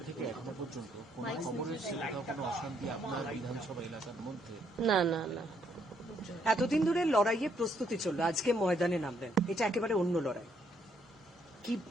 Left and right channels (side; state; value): both; normal; correlation 0.72